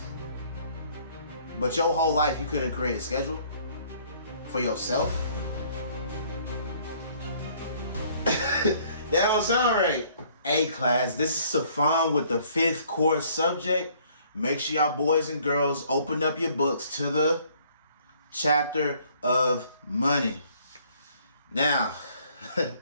but your whole life you couldn't create a schedule for yourself? That don't sound right. Hey class, this is Sifon with the 5th course subject. Make sure y'all boys and girls open up your books to the chapter of money. Now,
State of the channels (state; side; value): inverted; both; correlation -0.60